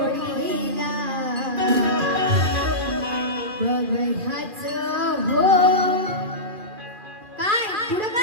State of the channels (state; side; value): late; left; 2.4 ms